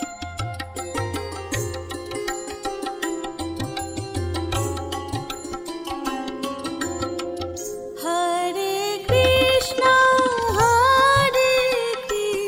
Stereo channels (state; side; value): identical; both; correlation 1.00